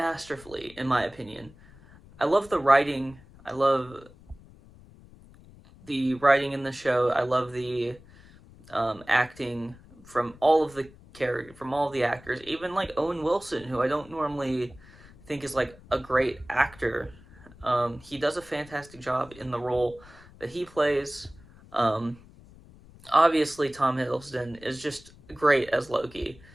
in my opinion. I love the writing. I love the writing in the show. I love the acting from all of the actors, even like Owen Wilson, who I don't normally think is like a great actor. He does a fantastic job in the role that he plays. Um, Obviously, Tom Hiddleston is just great as Loki.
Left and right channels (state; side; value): noise; left; rumble, 23 dB below the sound